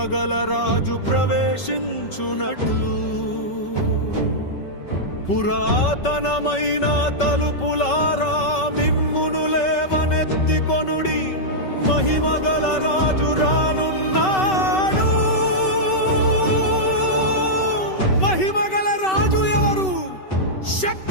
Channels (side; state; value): right; late; 5.3 ms